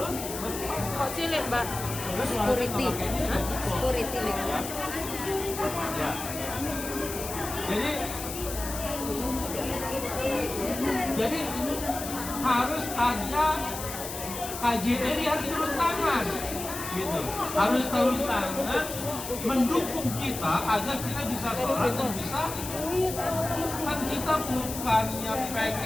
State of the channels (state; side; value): noise; left; hiss, 8 dB below the sound